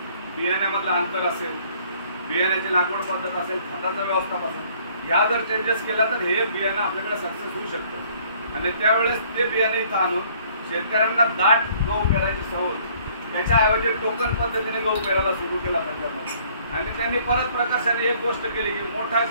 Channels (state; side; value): inverted; both; correlation -0.60